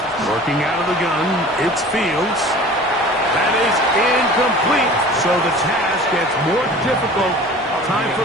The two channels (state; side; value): normal; both; correlation 0.43